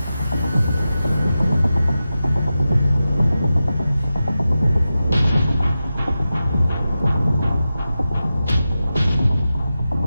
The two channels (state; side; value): inverted; both; correlation -0.92